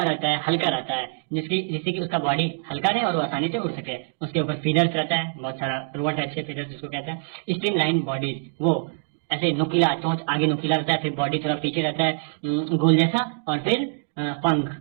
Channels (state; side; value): silent; left; digital silence